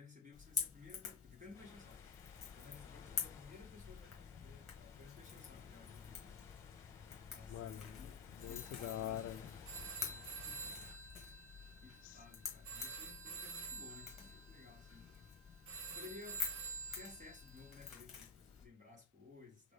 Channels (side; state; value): right; quieter; 4.0 dB